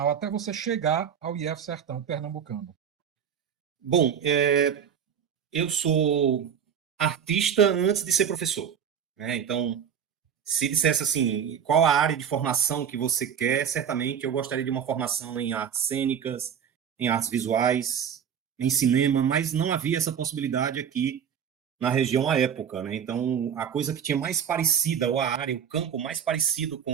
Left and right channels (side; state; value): left; quieter; 8.1 dB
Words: até você chegar ao IF Sertão Pernambucano. Bom, eu sou artista antes de ser professor, né? Então, se dissesse assim, qual a área de formação que você quer, certamente eu gostaria de uma formação em artes cênicas, em artes visuais, em cinema, mas não havia essa possibilidade aqui na região à época, né? Então, a coisa que tinha mais parecida, ou a área, o campo mais parecido